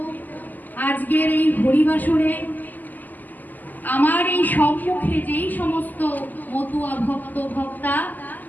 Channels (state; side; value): late; right; 0.084 ms